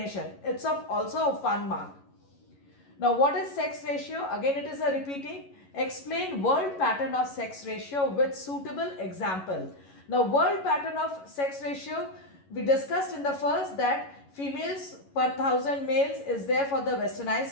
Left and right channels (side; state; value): right; late; 11 ms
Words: It's also a fun mark. Now what is sex ratio? Again it is a repeating. Explain world pattern of sex ratio with suitable example. Now world pattern of sex ratio, we discussed in the first that females per 1000 males is there for the